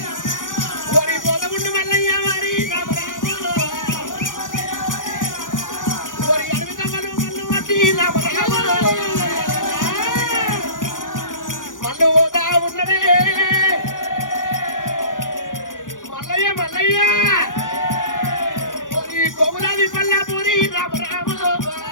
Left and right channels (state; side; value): late; right; 0.88 ms